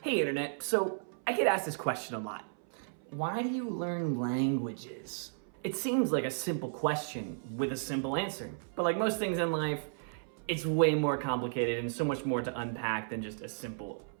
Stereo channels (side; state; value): left; silent; 55 dB below the other